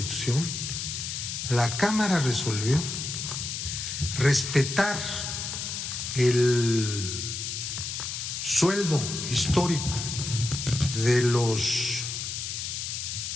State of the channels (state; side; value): noise; left; hiss, 4 dB below the sound